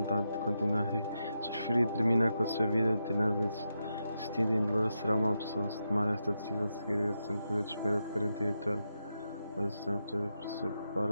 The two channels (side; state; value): both; inverted; correlation -0.86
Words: de continuar. Se preferir terminar com a sua vida, tenaz existindo em dolor, será uma opção. Se tomar esta decisão, seguirá sempre um período de espera de 48 horas